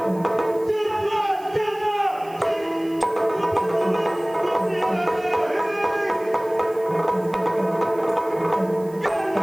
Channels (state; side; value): noise; right; hiss, 25 dB below the sound